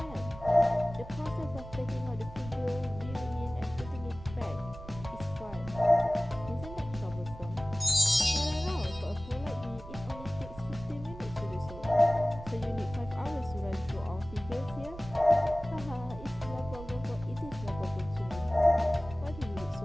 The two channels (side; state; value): right; noise; rumble, 14 dB below the sound